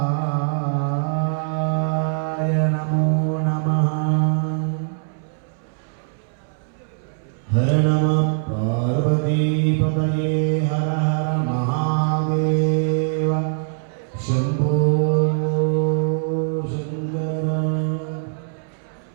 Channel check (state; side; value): silent; left; 64 dB below the other